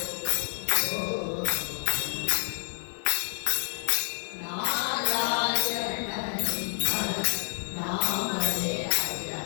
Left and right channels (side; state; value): right; silent; digital silence